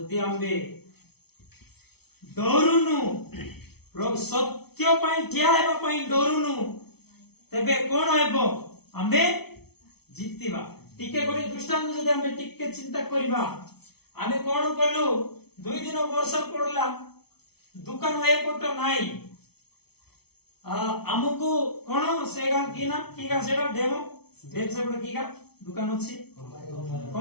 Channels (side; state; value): right; late; 0.97 ms